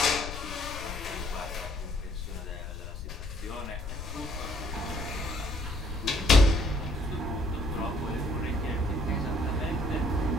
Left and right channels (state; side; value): noise; left; rumble, 8 dB below the sound